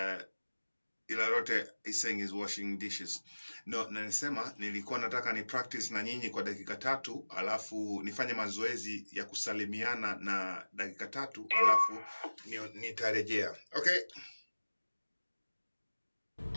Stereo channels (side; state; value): both; inverted; correlation -1.00